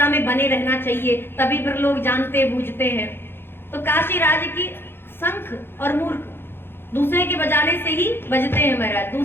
में बने रहना चाहिए, तभी फिर लोग जानते बूझते हैं। तो काशी राज की शंख और मूर्ख दूसरे के बजाने से ही बजते हैं महाराज।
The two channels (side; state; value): right; late; 0.11 ms